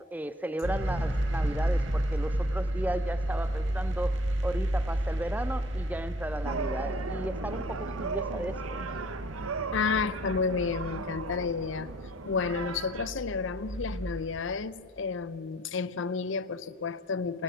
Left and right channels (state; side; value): normal; both; correlation 0.55